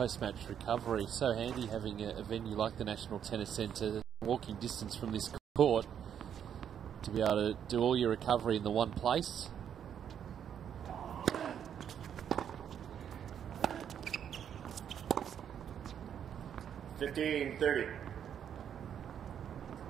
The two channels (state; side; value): quieter; left; 8.8 dB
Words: recovery. So handy having a venue like the National Tennis Centre, walking distance from this court, to be able to do all your recovery in the one place.